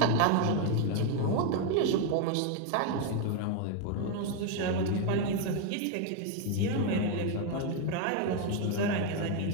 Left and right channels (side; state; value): both; different; correlation 0.01